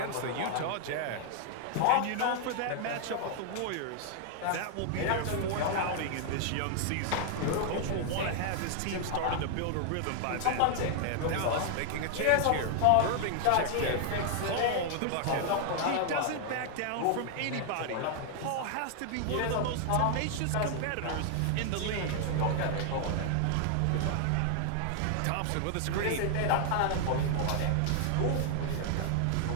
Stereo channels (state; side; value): different; both; correlation 0.00